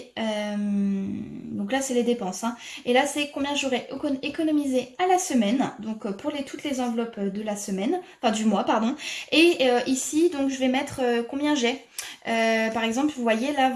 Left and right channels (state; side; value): identical; both; correlation 1.00